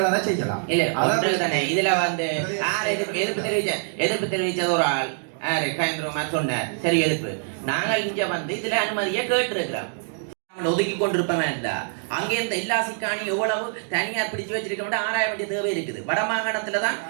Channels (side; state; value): left; silent; 62 dB below the other